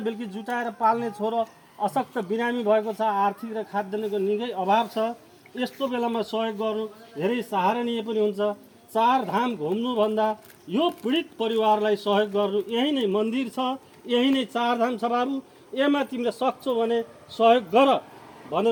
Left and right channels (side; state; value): both; identical; correlation 1.00